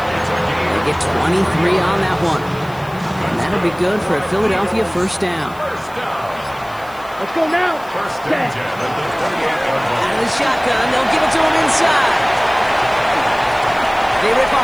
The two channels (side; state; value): left; noise; hiss, 24 dB below the sound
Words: get 23 on that one. And that'll be good for a Philadelphia 1st down. Let's go now. 1st and 10 at the 28-yard line. Out of the shotgun, they'll give it to him inside. They rip